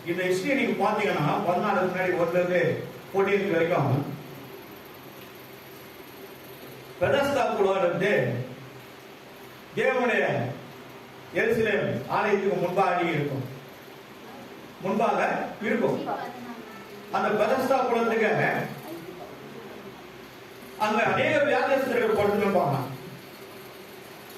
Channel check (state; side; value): identical; both; correlation 1.00